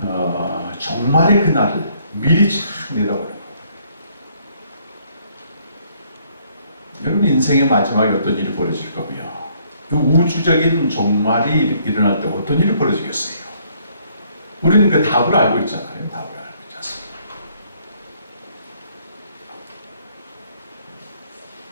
종말의 그날을 미리 쫙 내다보는 거예요. 여러분 인생의 마지막에 어떤 일이 벌어질 거며 그 우주적인 종말이 일어날 때 어떤 일이 벌어지겠어요? 우리는 그 답을 알고 있잖아요. 답을 알고 있지 않습니까?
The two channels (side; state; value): both; inverted; correlation -0.66